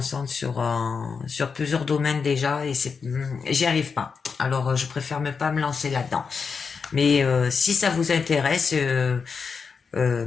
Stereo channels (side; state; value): right; quieter; 5.5 dB